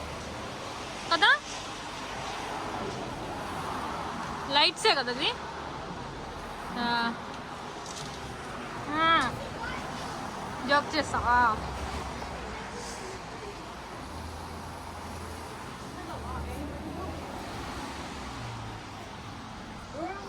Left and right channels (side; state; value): both; identical; correlation 1.00